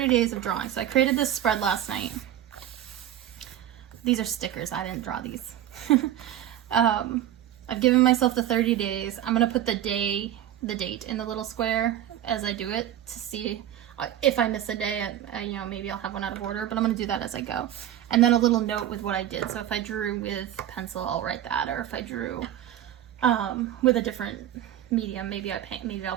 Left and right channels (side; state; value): left; quieter; 11.7 dB